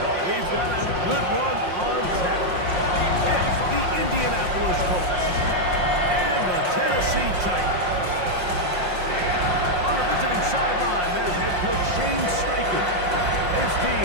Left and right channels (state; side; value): late; left; 5.6 ms